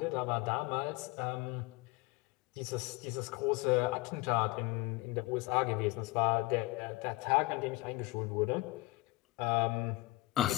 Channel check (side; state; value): right; quieter; 21.5 dB